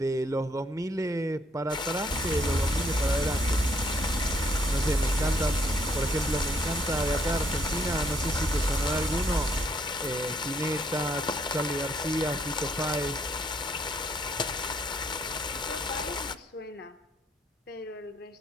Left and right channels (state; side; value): normal; both; correlation 0.69